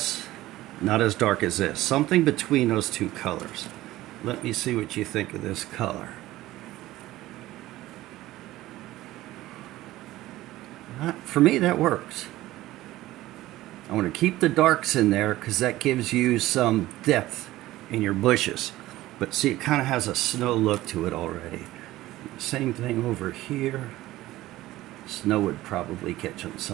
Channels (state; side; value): quieter; left; 16.4 dB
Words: not as dark as this. Something between those two colors. Let me see what you think of this color. For me, that works. I want to keep the darks in there because that gives you some depth in your bushes. But see, it kind of has a snow look to it already. Same thing over here. Snow would probably catch on